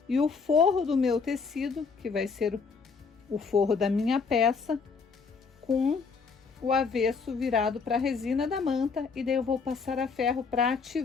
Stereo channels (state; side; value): quieter; right; 5.1 dB